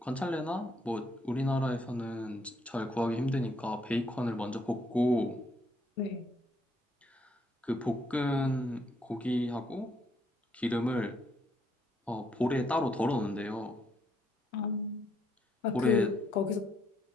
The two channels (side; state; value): both; normal; correlation 0.72